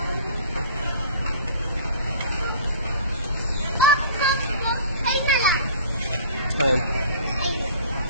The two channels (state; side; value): inverted; both; correlation -0.45